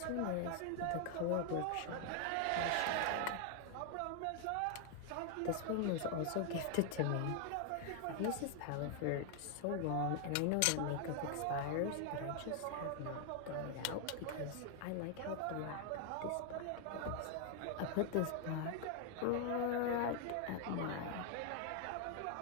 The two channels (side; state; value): both; different; correlation 0.00